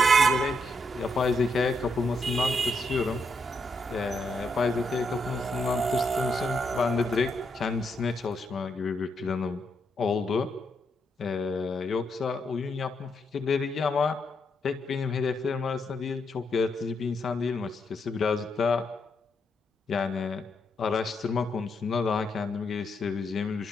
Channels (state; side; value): normal; both; correlation 0.79